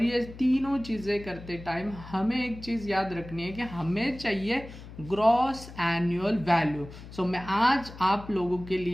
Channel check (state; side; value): noise; left; hum, 15 dB below the sound